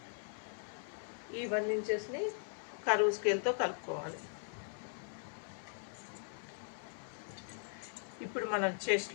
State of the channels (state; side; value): silent; right; 51 dB below the other